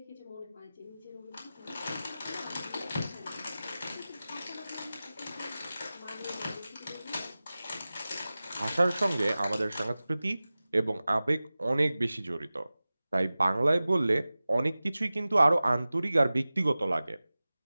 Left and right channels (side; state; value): both; inverted; correlation -0.96